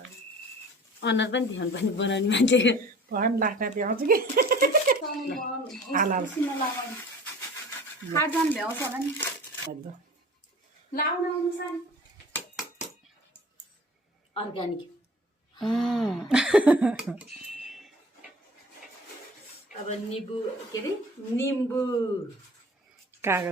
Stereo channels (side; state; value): both; normal; correlation 0.44